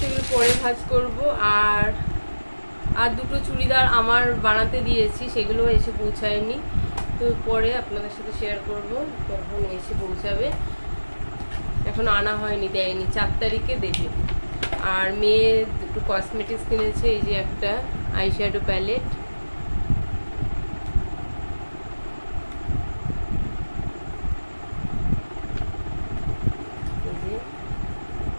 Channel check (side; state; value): both; inverted; correlation -1.00